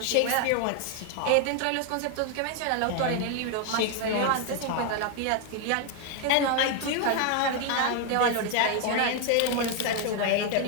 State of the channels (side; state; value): both; different; correlation 0.00